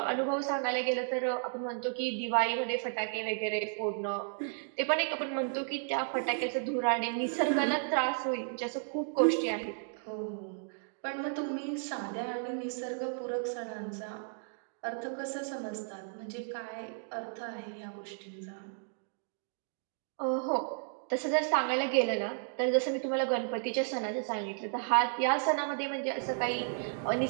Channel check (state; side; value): silent; left; digital silence